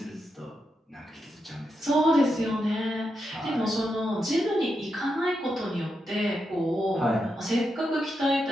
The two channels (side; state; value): both; normal; correlation 0.85